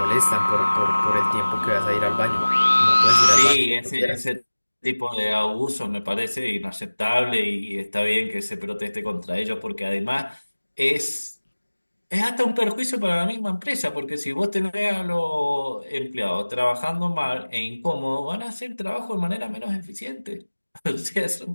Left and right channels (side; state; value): both; inverted; correlation -1.00